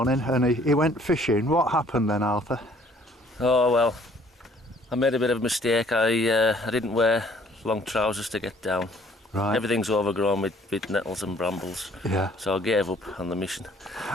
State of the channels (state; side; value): normal; both; correlation 0.59